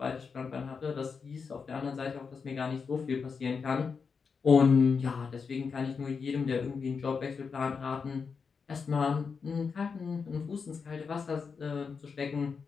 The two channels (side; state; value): right; quieter; 5.5 dB